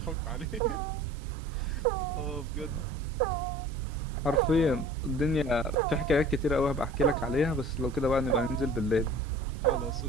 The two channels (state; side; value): normal; both; correlation 0.45